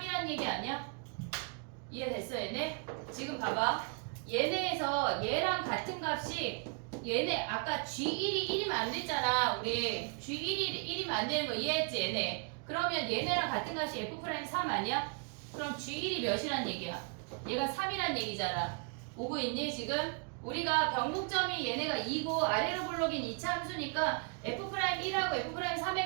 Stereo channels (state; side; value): quieter; left; 37.8 dB